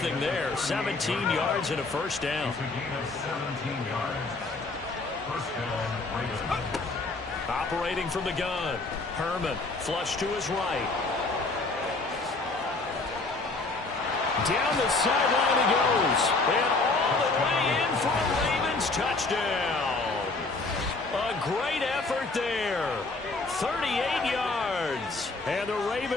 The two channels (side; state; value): right; quieter; 3.5 dB